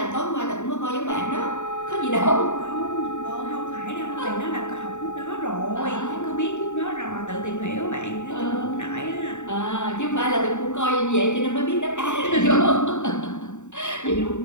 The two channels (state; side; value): late; right; 0.84 ms